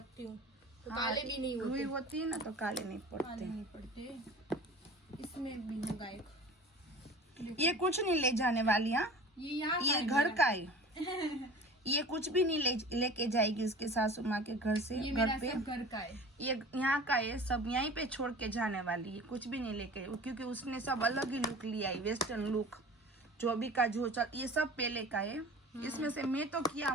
हूँ तो काले भी नहीं होते। रुई होती है ना तो काले नहीं काले पड़ते। नहीं पड़ते। इसमें भी होगा एक। ये कुछ नहीं ले जाने वाली, हाँ ये यहाँ ये घर का है। ये कुछ भी नहीं लेके जाएगी उसके सासू माँ के घर से। ये घर मेरा पे सब घर का है। ये यहाँ का है, सब यहीं पे छोड़ के जाने वाली है, कुछ भी नहीं लेके, क्योंकि उसने सब अलग ही लुक लिया है, वेस्टर्न लुक। जो अभी का जो चल, ये सब पहले का है। इसमें से मैं तो किया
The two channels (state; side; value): normal; both; correlation 0.40